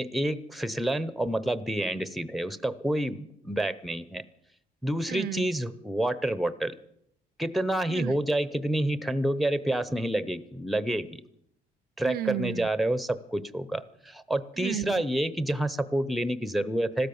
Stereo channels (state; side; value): normal; both; correlation 0.89